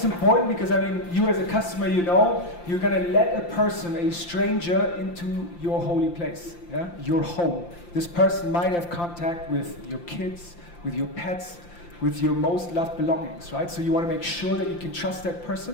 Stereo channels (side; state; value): right; late; 5.8 ms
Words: important? Because you as a customer, you're going to let a person, a stranger, into your holy place, your home. This person might have contact with your kids, with your pets, with your most loved belongings, right? So you want to make sure that you can trust that